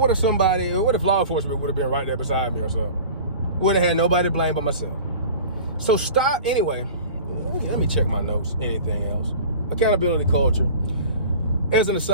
if law enforcement would have been right there beside me or something? Would have had nobody to blame but myself. So stop, anyway, let me check my notes, anything else. Accountability culture. As an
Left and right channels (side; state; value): both; inverted; correlation -0.40